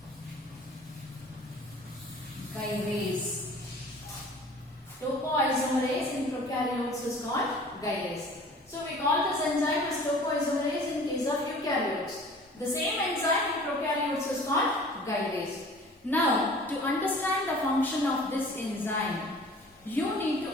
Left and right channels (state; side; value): normal; both; correlation 0.47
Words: gyrase. Topoisomerase in prokaryotes is called gyrase. So we call this enzyme as topoisomerase in case of eukaryotes. The same enzyme in prokaryotes is called gyrase. Now, to understand the function of this enzyme, you need to